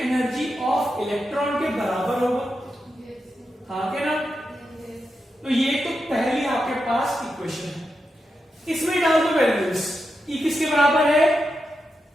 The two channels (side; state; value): both; normal; correlation 0.87